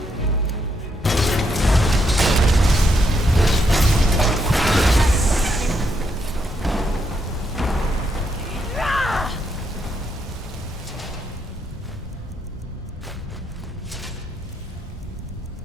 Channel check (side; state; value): both; normal; correlation 0.77